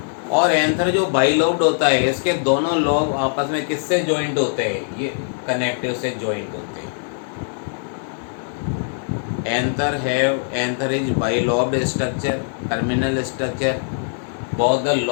और एंथर जो बाइलॉब्ड होता है, इसके दोनों लोब आपस में किससे ज्वाइंट होते हैं, ये कनेक्टिव से ज्वाइंट होते हैं। Anther is bilobed structure, terminal structure. Both the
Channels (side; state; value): right; silent; digital silence